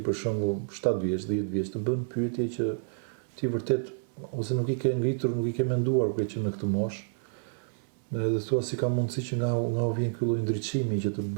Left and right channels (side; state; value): left; silent; 58 dB below the other